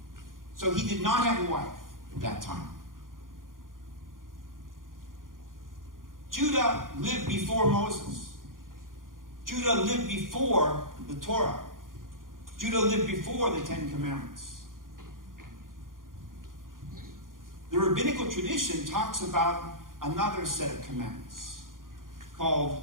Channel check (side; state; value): left; late; 0.90 ms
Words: So he did not have a wife at that time. Judah lived before Moses. Judah lived before the Torah. Judah lived before the Ten Commandments. The rabbinical tradition talks about another set of commandments